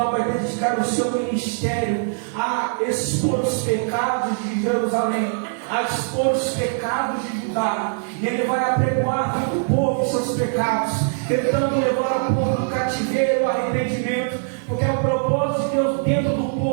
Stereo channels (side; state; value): left; silent; digital silence